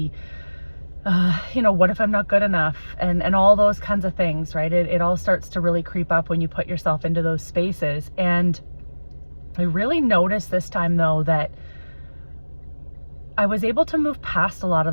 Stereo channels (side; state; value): both; inverted; correlation -1.00